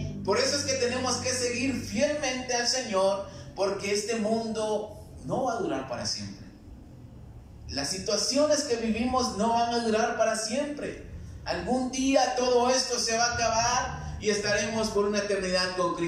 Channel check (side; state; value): both; identical; correlation 1.00